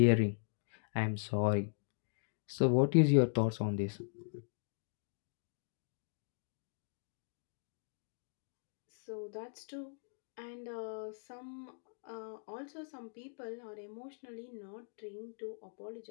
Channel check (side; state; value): right; silent; digital silence